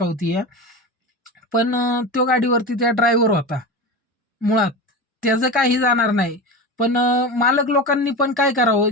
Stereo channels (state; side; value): normal; both; correlation 0.24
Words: पण तो गाडीवरती त्या ड्रायव्हर होता. मुळात त्याचं काही जाणार नाही. पण मालक लोकांनी पण काय करावं,